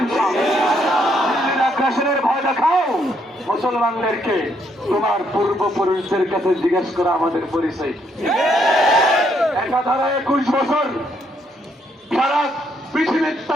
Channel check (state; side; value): normal; both; correlation 0.73